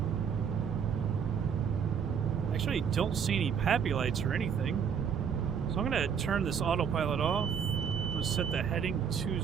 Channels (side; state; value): left; quieter; 7.3 dB